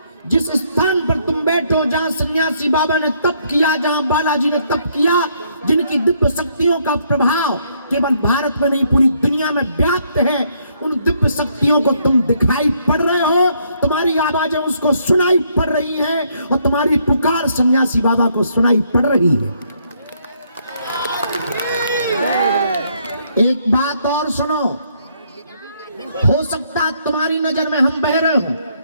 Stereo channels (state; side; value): inverted; both; correlation -0.70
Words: जिस स्थान पर तुम बैठो, जहां सन्यासी बाबा ने तप किया, जहां बालाजी ने तप किया, जिनकी दिव्य शक्तियों का प्रभाव केवल भारत में नहीं पूरी दुनिया में व्याप्त है, उन दिव्य शक्तियों को तुम दिखाई पड़ रहे हो, तुम्हारी आवाजें उसको सुनाई पड़ रही हैं, और तुम्हारी पुकार सन्यासी बाबा को सुनाई पड़ रही है। एक बात और सुनो, हो सकता तुम्हारी नजर में हम बहरे हों,